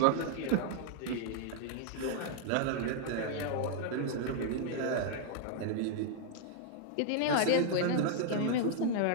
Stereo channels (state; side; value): different; both; correlation 0.00